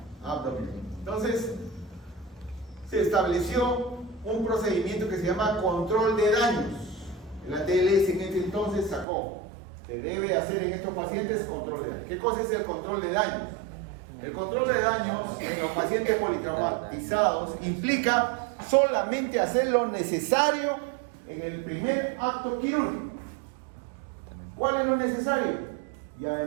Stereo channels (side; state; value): left; drops out; at 9.1 s